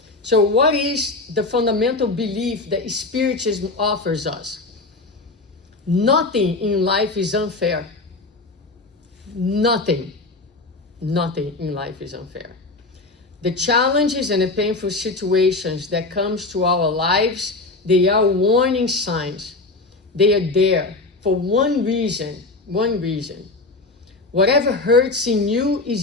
So what is the fundamental belief that Spiritism offers us? Nothing in life is unfair. Nothing in life is unfair. The challenges and the painful situations that comes to our lives, they are warning signs. They are there for one reason. Whatever hurts in you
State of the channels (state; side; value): quieter; right; 3.3 dB